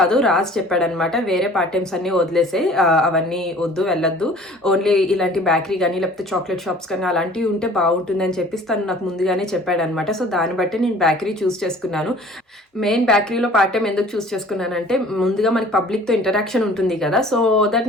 రాజ్ చెప్పాడనమాట. వేరే పార్ట్ టైమ్స్ అన్ని వదిలేసే, అవన్నీ వద్దు, వెళ్ళొద్దు, ఓన్లీ ఇలాంటి బేకరీ కానీ లేకపోతే చాక్లెట్ షాప్స్ కానీ అలాంటివి ఉంటే బాగుంటుంది అని చెప్పి తను నాకు ముందుగానే చెప్పాడనమాట. సో దాన్ని బట్టి నేను బేకరీ చూస్ చేసుకున్నాను. మెయిన్ బేకరీలో పార్ట్ టైం ఎందుకు చూస్ చేసుకున్నానంటే, ముందుగా మనకి పబ్లిక్ తో ఇంటరాక్షన్ ఉంటుంది కదా, సో దట్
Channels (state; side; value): normal; both; correlation 0.49